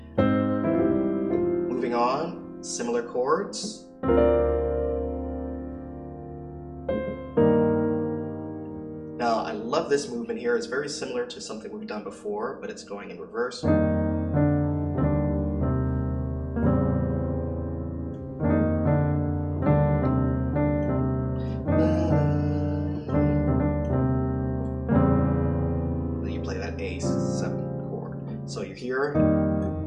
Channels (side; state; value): both; identical; correlation 1.00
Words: Moving on, similar chords. Now, I love this movement here. It's very similar to something we've done before, but it's going in reverse. So you're here,